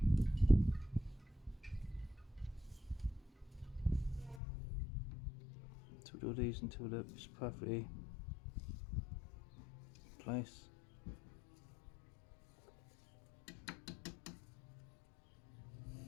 Twiddle these until it's perfectly in place.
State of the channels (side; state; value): right; drops out; at 4.4 s